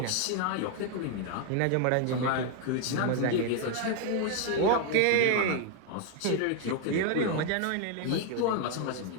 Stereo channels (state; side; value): different; both; correlation 0.00